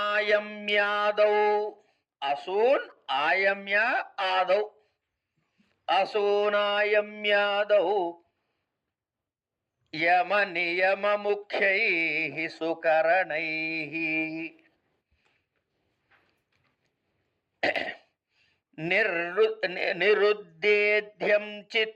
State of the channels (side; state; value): both; identical; correlation 1.00